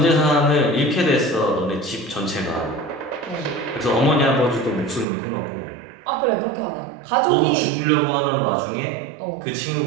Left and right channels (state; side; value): drops out; left; at 5.1 s